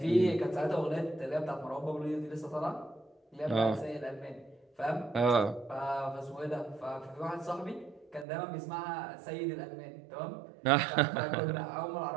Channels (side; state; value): left; drops out; at 8.2 s